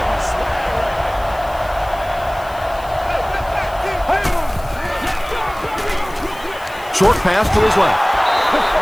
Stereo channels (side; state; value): left; noise; hiss, 22 dB below the sound